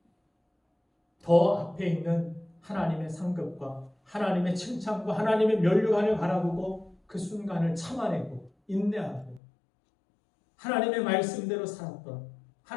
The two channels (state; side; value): drops out; right; at 9.4 s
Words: 더 앞에 있는 하나님의 상급과 하나님의 칭찬과 하나님의 면류관을 바라보고 그 순간을 참아내고 인내하고 하나님의 말씀대로 살았던,